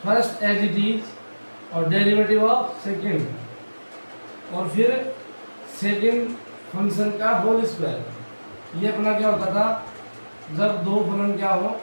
first as it is और डेरिवेटिव ऑफ सेकेंड, और फिर सेकेंड फंक्शन का होल स्क्वायर। ये अपना क्या होता था जब दो फलन क्या हो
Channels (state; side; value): inverted; both; correlation -1.00